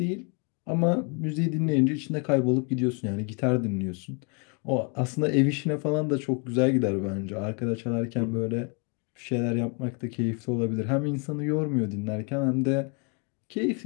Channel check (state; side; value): quieter; right; 36.4 dB